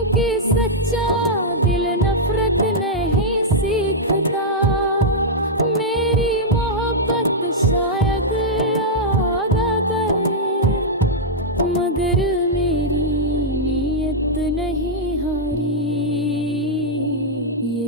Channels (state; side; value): normal; both; correlation -0.07